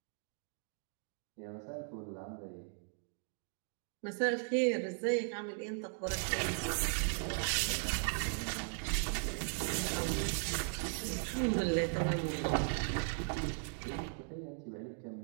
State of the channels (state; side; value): silent; left; 53 dB below the other